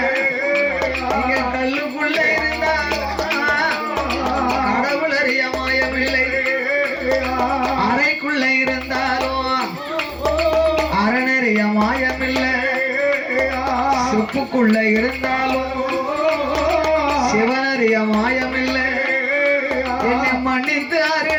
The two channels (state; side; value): identical; both; correlation 1.00